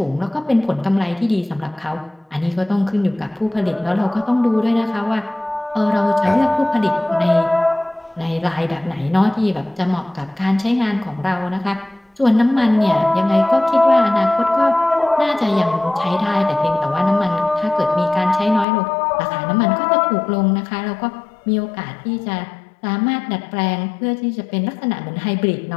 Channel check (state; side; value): drops out; right; at 18.7 s